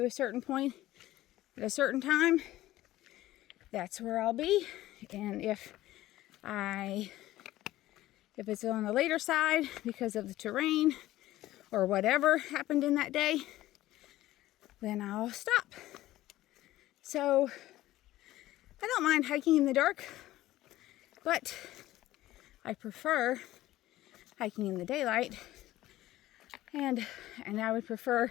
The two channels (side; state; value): right; quieter; 15.6 dB